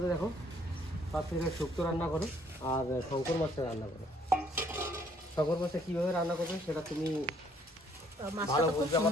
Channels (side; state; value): both; normal; correlation 0.64